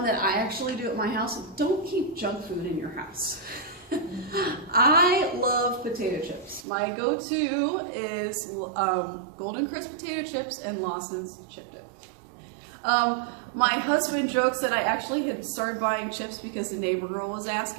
that I actually do at my house. Don't keep junk food in your house. I love potato chips. My go-to is Golden Crisp potato chips and Lawson's chip dip. My husband jokes that I actually had started buying chips because the neighbor girl was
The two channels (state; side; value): drops out; left; at 6.7 s